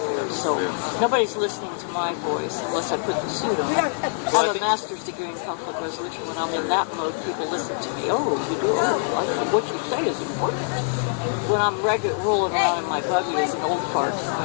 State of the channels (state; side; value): silent; right; digital silence